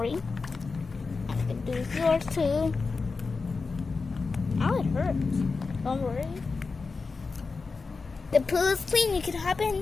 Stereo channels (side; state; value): right; quieter; 4.4 dB